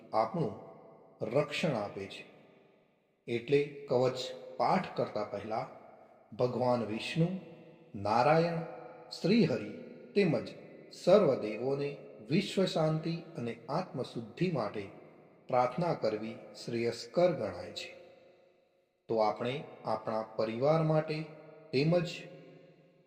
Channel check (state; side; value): identical; both; correlation 1.00